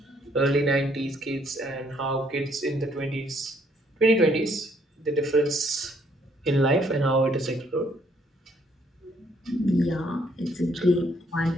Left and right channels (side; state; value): both; normal; correlation 0.67